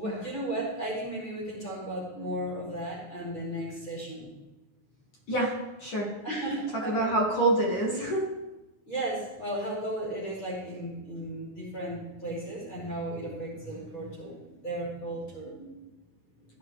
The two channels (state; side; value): late; right; 9.6 ms